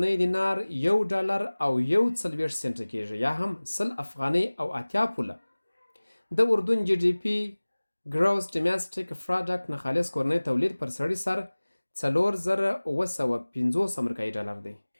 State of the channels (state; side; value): inverted; both; correlation -1.00